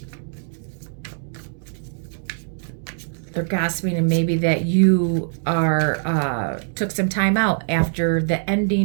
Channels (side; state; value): left; silent; digital silence